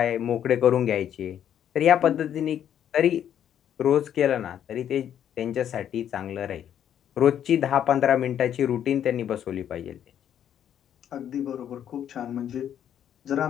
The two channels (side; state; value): right; quieter; 9.8 dB